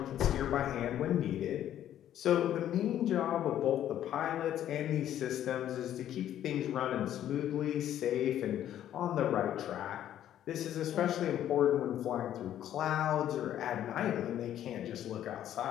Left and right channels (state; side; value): quieter; right; 11.4 dB